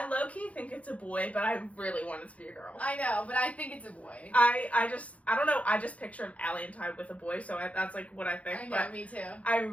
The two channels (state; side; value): late; right; 0.065 ms